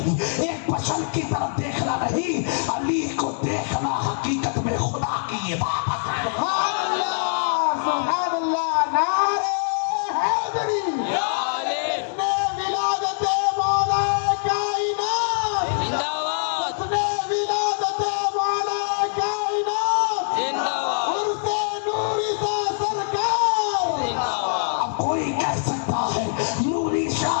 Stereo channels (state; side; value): silent; right; digital silence